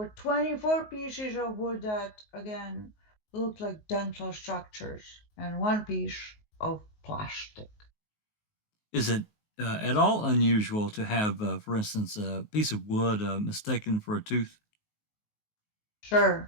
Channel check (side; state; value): right; late; 19 ms